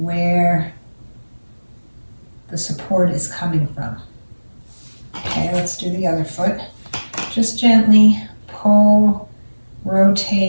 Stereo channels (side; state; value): both; inverted; correlation -1.00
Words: where the support is coming from. Okay, let's do the other foot. Just gently pull,